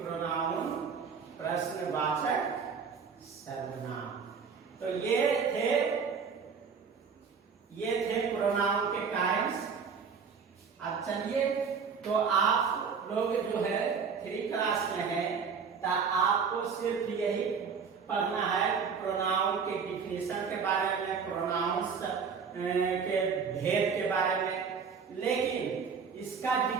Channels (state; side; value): quieter; left; 6.0 dB